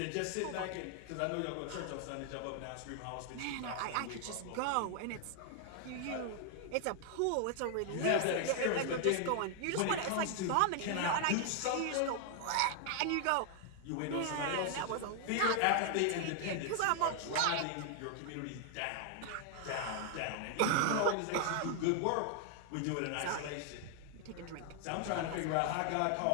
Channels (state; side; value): different; both; correlation 0.00